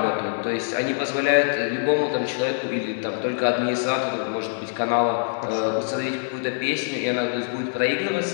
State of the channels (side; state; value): right; silent; 62 dB below the other